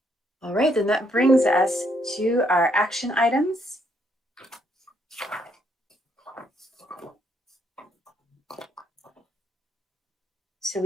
All right, then that brings us to our action items. So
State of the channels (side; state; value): both; normal; correlation 0.72